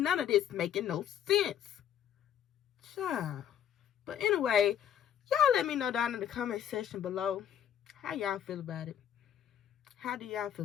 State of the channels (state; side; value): quieter; right; 9.8 dB